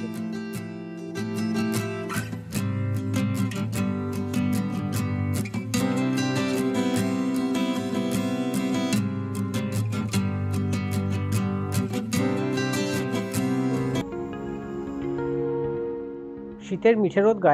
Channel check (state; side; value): identical; both; correlation 1.00